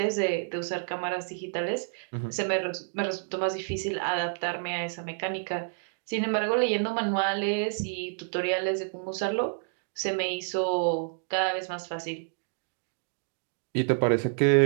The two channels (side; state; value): left; silent; digital silence